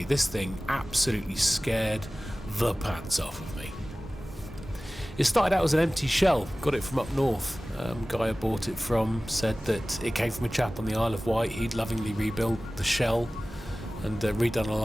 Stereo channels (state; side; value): normal; both; correlation 0.97